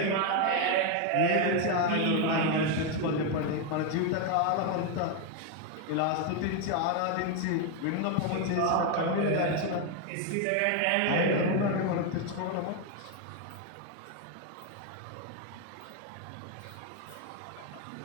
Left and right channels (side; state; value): both; different; correlation 0.01